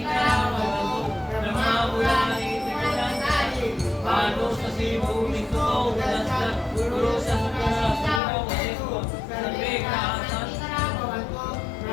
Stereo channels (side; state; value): right; drops out; at 8.2 s